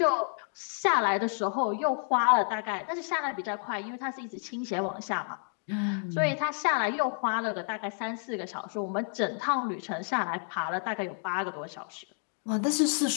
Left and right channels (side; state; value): right; silent; 58 dB below the other